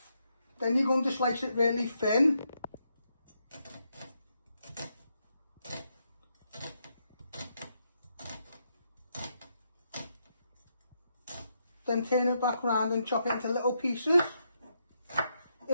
Then you're going to slice it really thin. Then turn it back round and chop it into little pieces.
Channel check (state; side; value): inverted; both; correlation -0.80